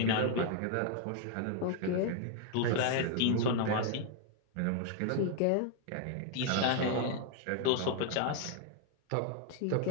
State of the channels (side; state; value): both; different; correlation 0.00